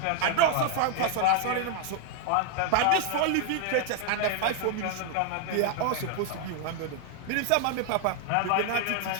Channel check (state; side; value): different; both; correlation 0.00